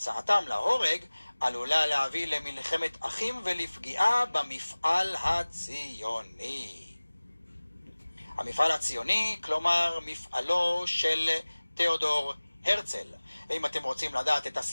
להורג עלולה להביא למלחמת אחים ולפגיעה במפעל הציוני. המפעל הציוני, כלומר מפעלו של תיאודור הרצל. ואם אתם רוצים לדעת את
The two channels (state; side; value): inverted; both; correlation -1.00